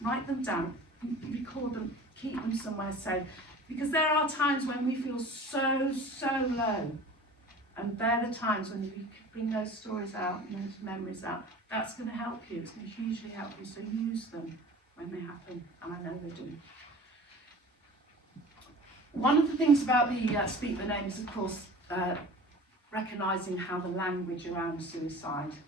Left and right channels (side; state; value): both; normal; correlation 0.41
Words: Write them down, record them, keep them somewhere safe. Because there are times when we feel so low. And they're the times when you bring those stories out, those memories out. That's going to help you. It's going to hugely help you. So use them when they happen. And I know they do. One of the things about the Speak the Names, of course, recognising how the language around suicide